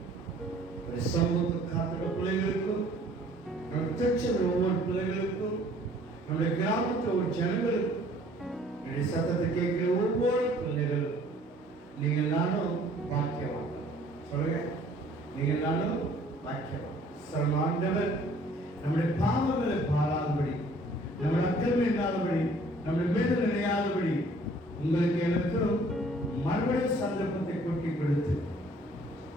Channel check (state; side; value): normal; both; correlation 0.56